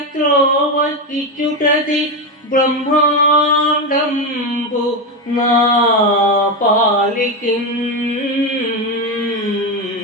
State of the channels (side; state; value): both; normal; correlation 0.12